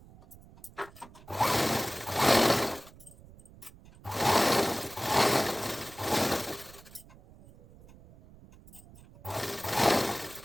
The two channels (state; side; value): noise; right; rumble, 22 dB below the sound